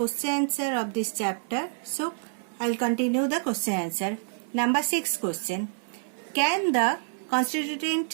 answer of this chapter, so I will continue the question answer. Number 6 question. Can the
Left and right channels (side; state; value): left; silent; 60 dB below the other